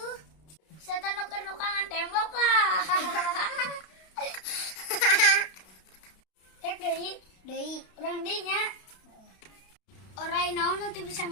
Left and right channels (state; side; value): late; right; 32 ms